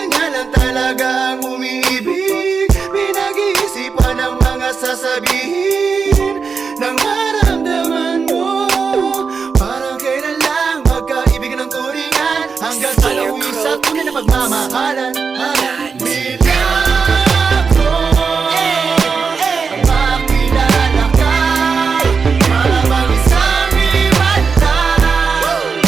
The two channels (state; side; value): quieter; left; 5.3 dB